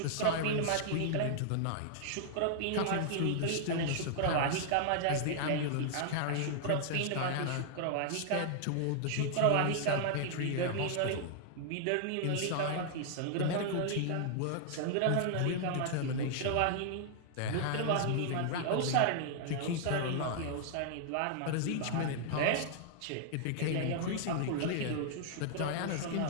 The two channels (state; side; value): different; both; correlation -0.01